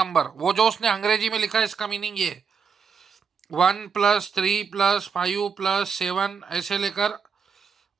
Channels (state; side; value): quieter; left; 6.0 dB